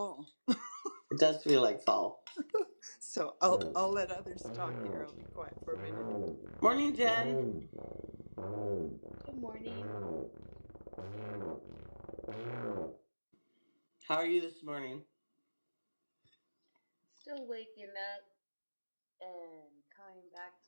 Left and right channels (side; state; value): both; inverted; correlation -1.00